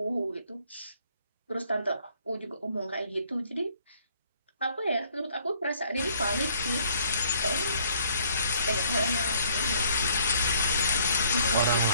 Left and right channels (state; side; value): inverted; both; correlation -0.62